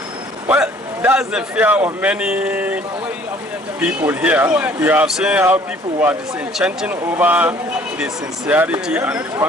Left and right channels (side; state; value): both; normal; correlation 0.55